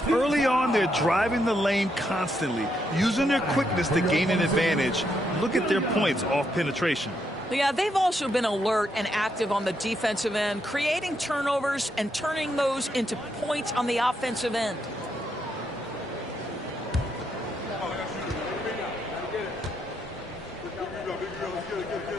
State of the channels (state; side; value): normal; both; correlation 0.78